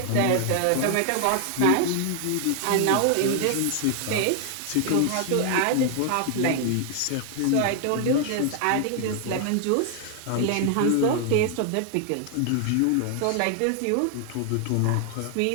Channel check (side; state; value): both; different; correlation 0.00